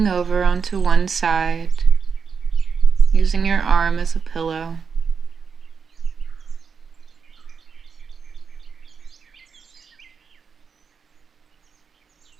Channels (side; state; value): left; quieter; 5.9 dB